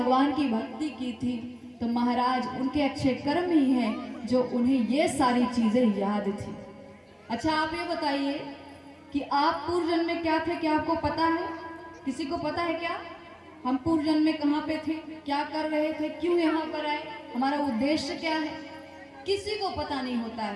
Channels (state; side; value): identical; both; correlation 1.00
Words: की भक्ति की थी। तो महाराज उनके अच्छे कर्म ही हैं जो उन्हें ये सारी चीजें याद थी। अच्छा आप ये बताइए कि आप पूर्व जन्म में क्या थे, क्या आपको पता है? किसी को पता है क्या हम पूर्व जन्म में कहाँ पे थे, क्या कर रहे थे, क्यों यहाँ पर आए, हमारा उद्देश्य क्या है? किसी को पता नहीं होता